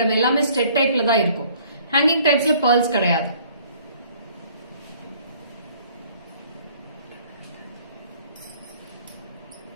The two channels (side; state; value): both; inverted; correlation -0.57